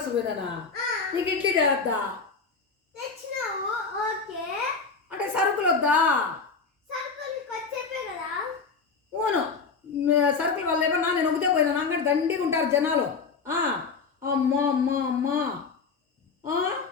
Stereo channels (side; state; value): right; quieter; 4.9 dB